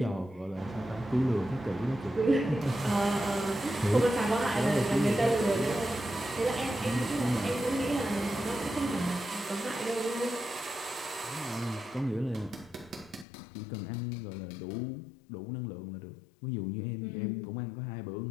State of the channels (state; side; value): drops out; right; at 13.2 s